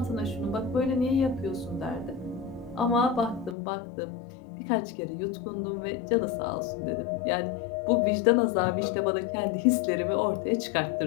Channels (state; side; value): drops out; right; at 3.6 s